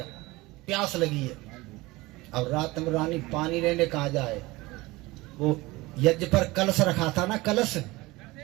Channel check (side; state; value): left; quieter; 21.1 dB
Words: प्यास लगी है। अब रात में रानी पानी लेने कहा जाए? वो यज्ञ पर कलश रखा था ना, कलश,